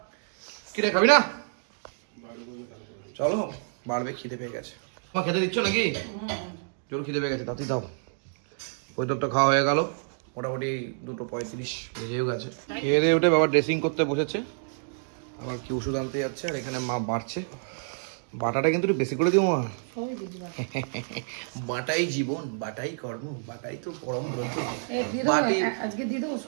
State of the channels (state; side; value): silent; left; digital silence